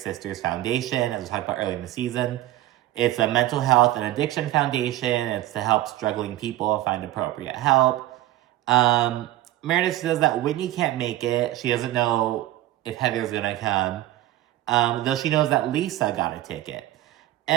Sisters Foundation, as we talked about earlier in the season. It's a mental health and addiction foundation. It's to help struggling people find appropriate help. Meredith says that Whitney can't make it. She doesn't know if Heather's gonna come, though she knows that Lisa got a ticket.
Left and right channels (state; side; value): quieter; left; 15.1 dB